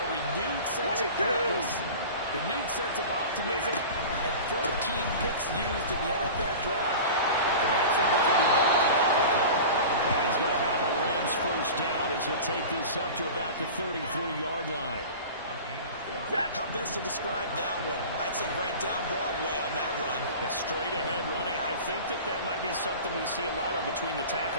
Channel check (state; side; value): inverted; both; correlation -0.35